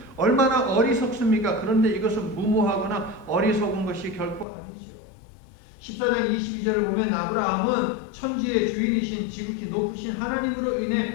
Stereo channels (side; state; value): right; drops out; at 4.5 s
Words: 얼마나 어리석습니까? 그런데 이것은 무모하거나 어리석은 것이 결코 아니죠. 14장 22절을 보면 아브라함은 천지의 주인이신 지극히 높으신 하나님으로